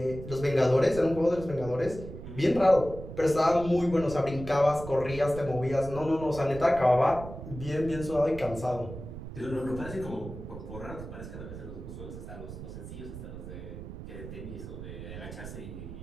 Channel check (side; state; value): right; noise; rumble, 11 dB below the sound